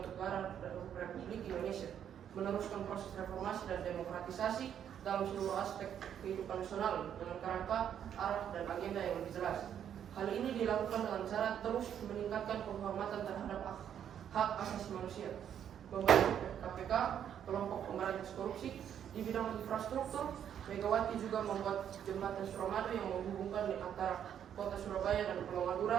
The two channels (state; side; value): quieter; left; 9.3 dB